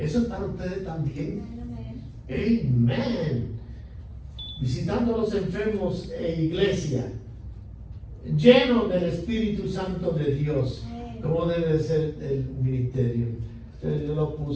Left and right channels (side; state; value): both; identical; correlation 1.00